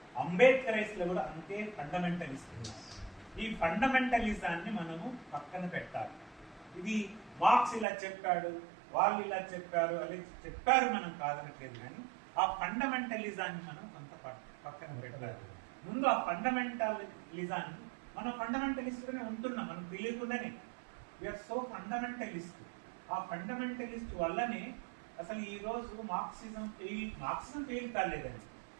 అంబేద్కరైస్లో కూడా అంతే ఫండమెంటలిస్ట్ ఉన్నారు. ఈ ఫండమెంటలిజాన్ని మనము పక్కన పెట్టాలి. ఇది మార్క్స్ ఇలా చెప్పాడు, వాళ్ళు ఇలా చెప్పారు, అలా చెప్పారు, మనం కాదనట్లేదు. కానీ ఆ ఫండమెంటలిజాన్ని మనం కొంత పక్కన పెట్టాలి. ముందు ఆ ఫండమెంటలిజాన్ని, మనం ఫండమెంటలిస్ట్గానే ఉంటున్నాం, మనం తెలియకుండానే వీఆర్ సో ఫండమెంటలిస్ట్. ఆ ఫండమెంటలిస్ట్ వల్లనే అసలు ఈ రోజు మార్క్సిజం ఫెయిల్ కాలేదండి.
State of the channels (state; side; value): drops out; left; at 7.9 s